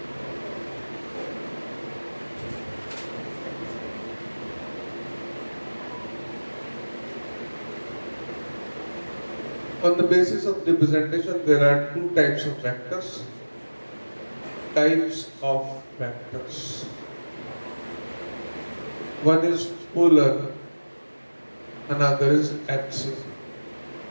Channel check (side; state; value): both; inverted; correlation -1.00